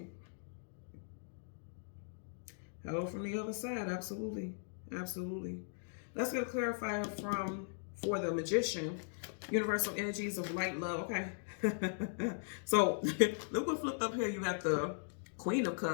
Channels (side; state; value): right; silent; digital silence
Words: Hello from the other side. Absolutely. Absolutely. Let's get a clarifier for the Magician. Universal energies of light, love. Okay. So look what flipped up here. You got the Queen of